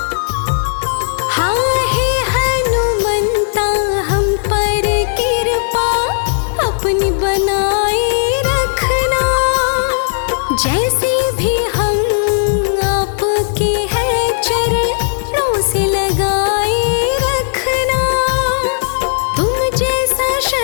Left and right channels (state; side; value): silent; right; digital silence